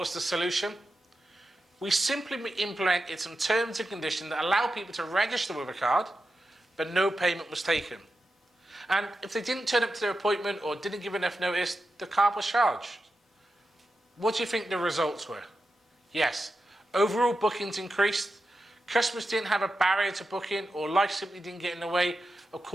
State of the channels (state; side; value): normal; both; correlation 0.90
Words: the solution? We simply implemented some terms and conditions that allow people to register with a card, but no payment was taken. And if they didn't turn up to their appointment or didn't give enough notice, the card was charged. What do you think the results were? Yes, overall bookings increased, customers didn't have a barrier to booking, or life simply didn't get in the way of